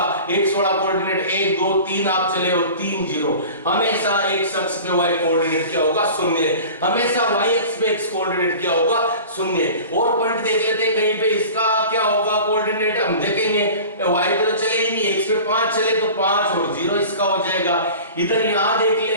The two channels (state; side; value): inverted; both; correlation -0.39